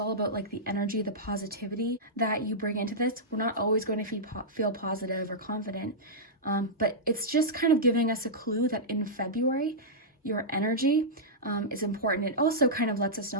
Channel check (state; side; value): normal; both; correlation -0.11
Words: about like the energy, the positivity that you bring into this. We're not always going to feel positive or confident, but it's just kind of giving us a clue that in February, your energy is important. It also kind of lets us